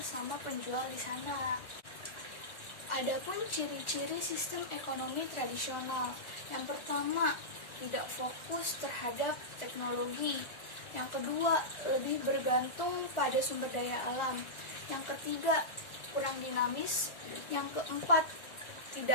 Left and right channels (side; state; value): right; late; 1.4 ms